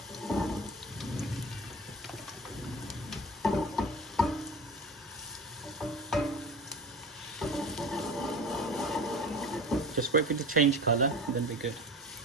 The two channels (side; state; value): both; normal; correlation 0.34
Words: Just wait for it to change colour, and then be good.